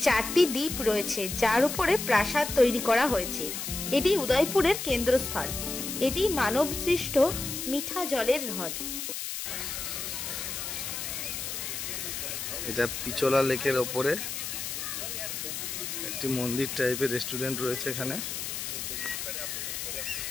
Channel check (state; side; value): noise; left; hiss, 5 dB below the sound